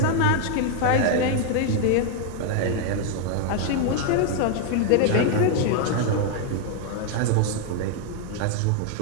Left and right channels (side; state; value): both; different; correlation 0.00